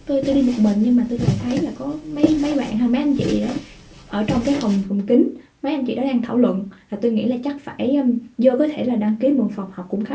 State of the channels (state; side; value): identical; both; correlation 1.00